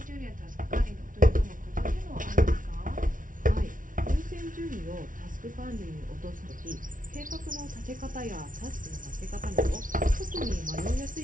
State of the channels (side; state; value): left; late; 0.38 ms